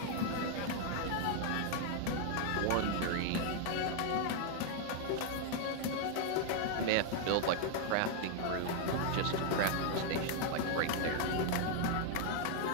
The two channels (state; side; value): different; both; correlation 0.00